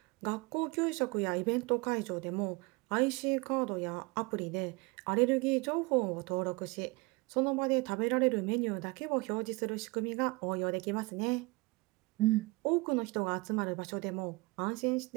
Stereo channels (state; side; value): quieter; left; 25.0 dB